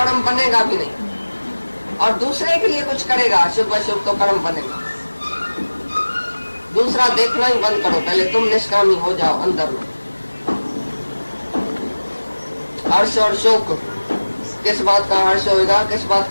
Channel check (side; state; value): both; inverted; correlation -1.00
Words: बनेगा भी नहीं। और दूसरे के लिए कुछ करेगा शुभ अशुभ, तो कर्म बनेगा। दूसरा देखना ही बंद करो, पहले तुम निष्कामी हो जाओ अंदर में। हर्ष और शोक, किस बात का हर्ष होएगा, किस बात